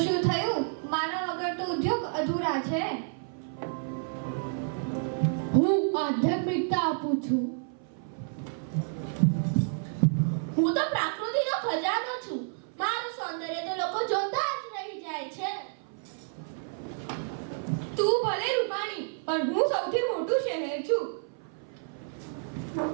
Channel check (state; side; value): silent; left; 55 dB below the other